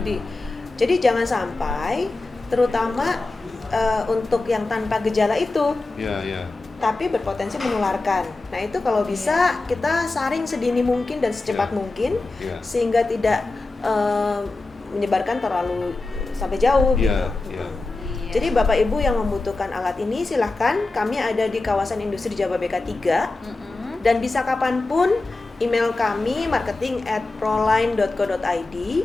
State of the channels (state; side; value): quieter; right; 3.3 dB